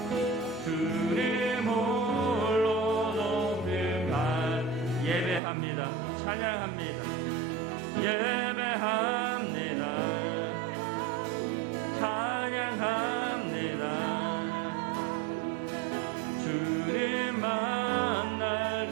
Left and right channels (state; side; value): drops out; left; at 5.4 s